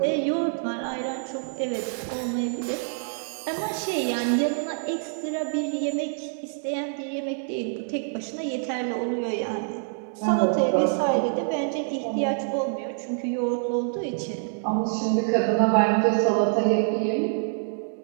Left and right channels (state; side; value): silent; left; digital silence